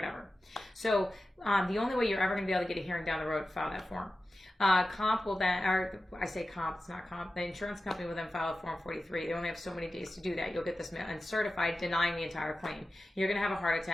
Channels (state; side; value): normal; both; correlation 0.94